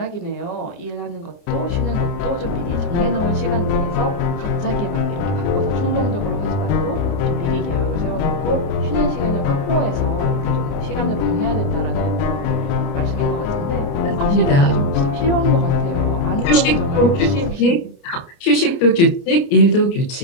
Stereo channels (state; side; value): late; right; 29 ms